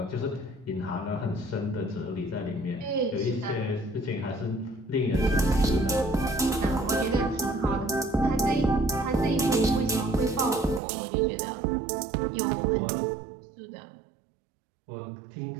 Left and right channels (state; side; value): drops out; left; at 10.8 s